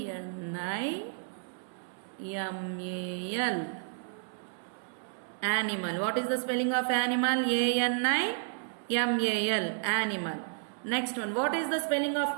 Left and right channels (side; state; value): left; silent; digital silence